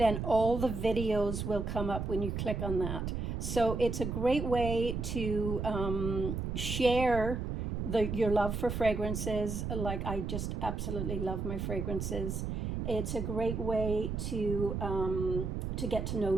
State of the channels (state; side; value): noise; right; rumble, 3 dB below the sound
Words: all the videos will come up when you click on that. So it's a great way to share your love for fragrances. Like, I just absolutely love my fragrances. It's a great way to get to know